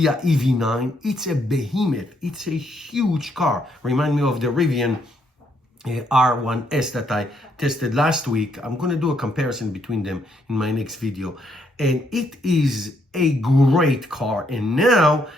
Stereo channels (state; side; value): normal; both; correlation 0.73